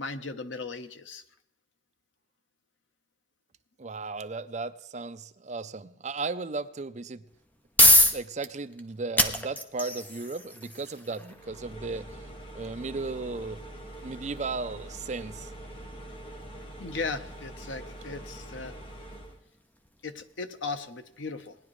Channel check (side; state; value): both; normal; correlation 0.24